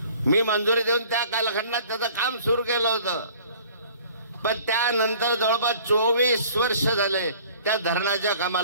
मी मंजुरी देऊन त्या कालखंडात त्याचं काम सुरू केलं होतं. पण त्यानंतर जवळपास 24 वर्ष झाले त्या धरणाच्या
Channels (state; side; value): inverted; both; correlation -0.51